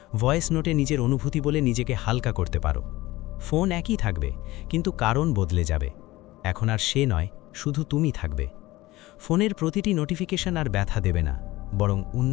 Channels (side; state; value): right; quieter; 18.6 dB